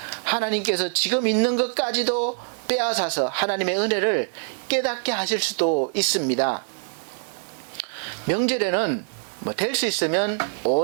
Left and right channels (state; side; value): silent; left; 62 dB below the other